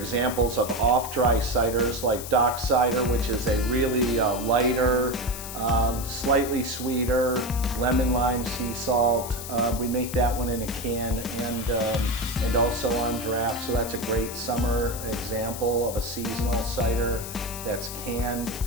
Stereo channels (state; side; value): noise; left; hiss, 10 dB below the sound